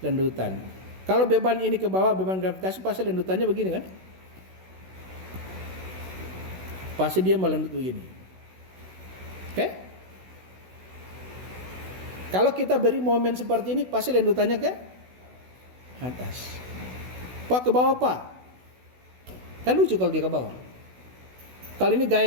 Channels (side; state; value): left; late; 16 ms